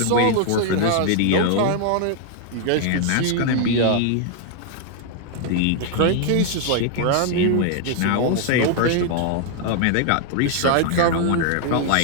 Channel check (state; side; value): different; both; correlation 0.00